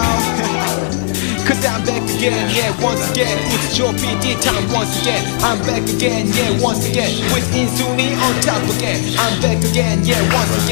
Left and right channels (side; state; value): right; silent; digital silence